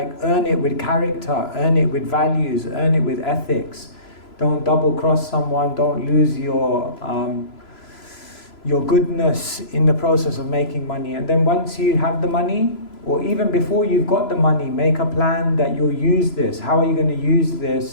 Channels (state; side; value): late; right; 3.0 ms